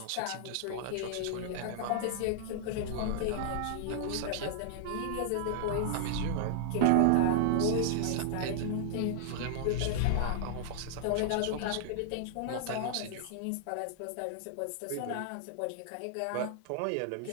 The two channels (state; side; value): different; both; correlation -0.01